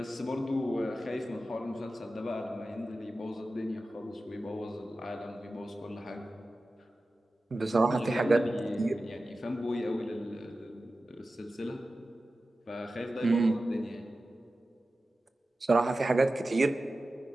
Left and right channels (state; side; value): normal; both; correlation 0.94